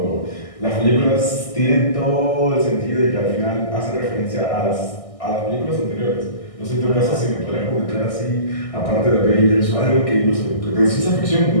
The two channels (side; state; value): right; late; 1.6 ms